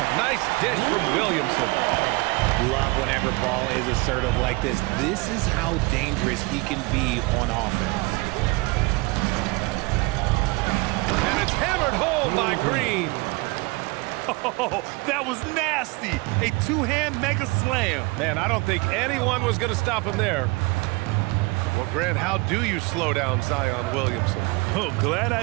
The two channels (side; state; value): left; quieter; 25.2 dB